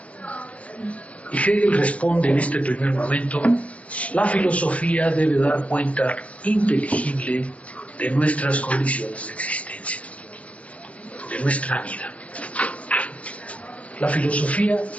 Y Hegel responde en este primer momento, la filosofía debe dar cuenta inteligible de nuestras condiciones de existencia, de nuestra vida. La filosofía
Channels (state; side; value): late; right; 0.064 ms